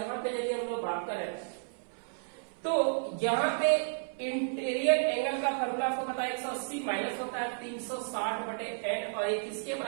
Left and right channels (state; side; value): silent; left; 56 dB below the other